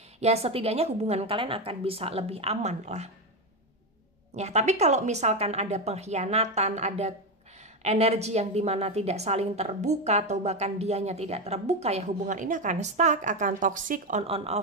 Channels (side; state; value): both; normal; correlation 0.12